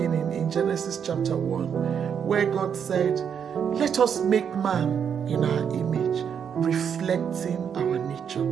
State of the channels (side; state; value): left; quieter; 7.7 dB